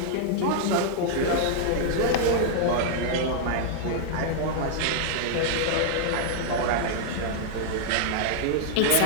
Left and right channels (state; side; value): different; both; correlation -0.01